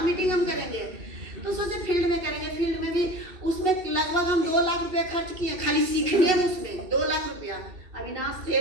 मीटिंग हम करेंगे? तो सोचे फील्ड में करेंगे। फील्ड में भी उसमें लगभग हम 2 लाख रुपया खर्च किए खाली सीखने में, उसमें 2 लाख रुपया। अविनाश थे,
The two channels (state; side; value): late; left; 2.7 ms